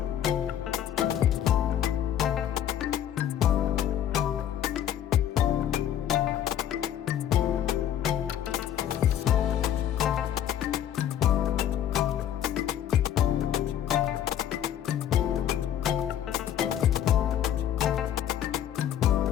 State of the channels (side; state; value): right; quieter; 10.4 dB